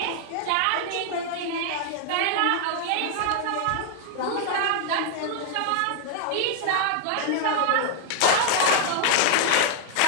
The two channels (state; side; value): different; both; correlation 0.00